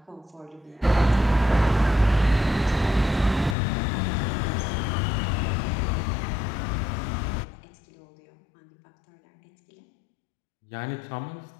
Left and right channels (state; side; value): drops out; right; at 3.6 s